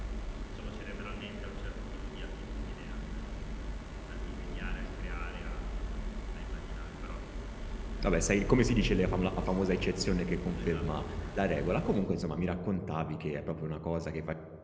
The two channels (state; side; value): identical; both; correlation 1.00